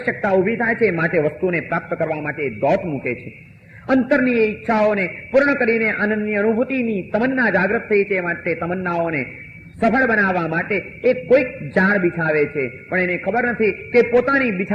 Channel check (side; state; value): both; identical; correlation 1.00